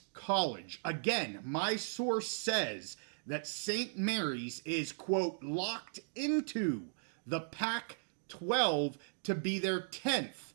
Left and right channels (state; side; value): silent; left; digital silence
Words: College. Again, my source says that St. Mary's is, quote, locked into the Pac-12 to be their 10th